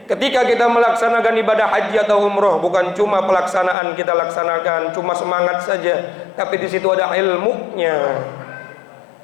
ketika kita melaksanakan ibadah haji atau umroh, bukan cuma pelaksanaan kita laksanakan, cuma semangat saja, tapi di situ ada ilmunya.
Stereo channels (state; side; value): drops out; right; at 3.8 s